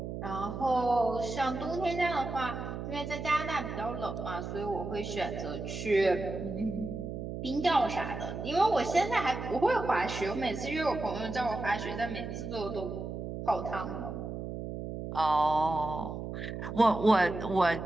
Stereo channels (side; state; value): right; noise; hum, 6 dB below the sound